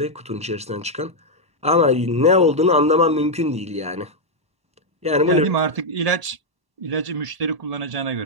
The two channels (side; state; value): left; late; 1.1 ms